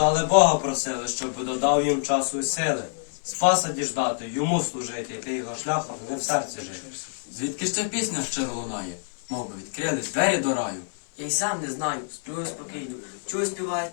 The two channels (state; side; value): silent; right; 61 dB below the other